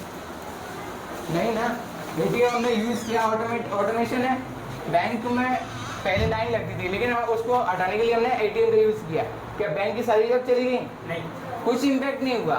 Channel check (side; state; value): both; identical; correlation 1.00